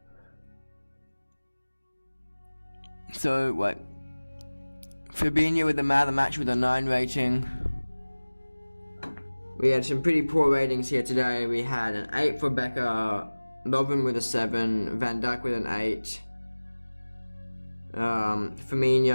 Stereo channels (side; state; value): both; inverted; correlation -1.00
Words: So, wait. Fabinho with the man of the match with a 9 rating. We had some pretty poor ratings here today. We had an 8 for Becker, Lovren with a 7, Van Dijk with an 8,